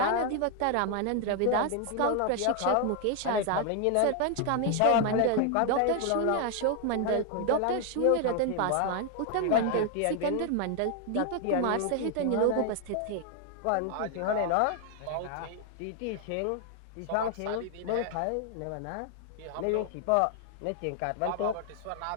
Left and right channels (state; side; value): different; both; correlation 0.00